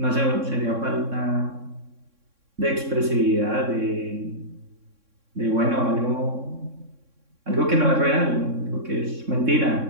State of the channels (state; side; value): late; left; 3.6 ms